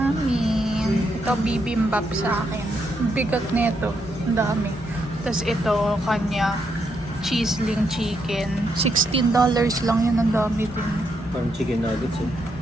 Ito bibimbap sa akin. Bigat nito. Ang dami. Tapos ito, kanya, cheeseling chicken. $16 lang yun. Ang dami din. Parang chicken nuggets eh.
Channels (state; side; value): normal; both; correlation 0.79